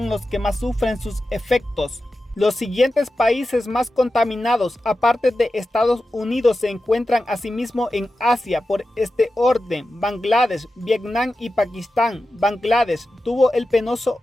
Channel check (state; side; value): normal; both; correlation 0.92